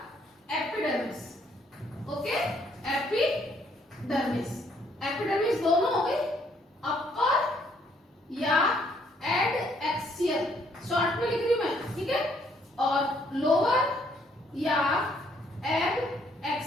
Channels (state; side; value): normal; both; correlation 0.68